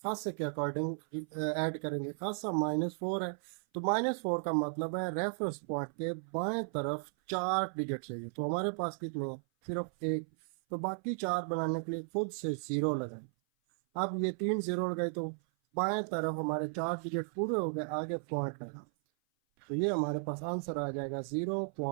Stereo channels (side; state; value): left; silent; 54 dB below the other